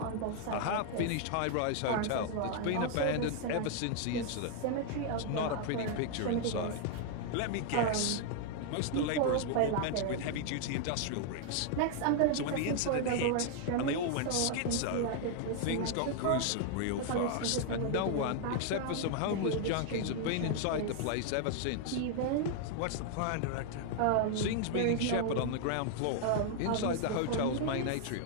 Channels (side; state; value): both; different; correlation 0.00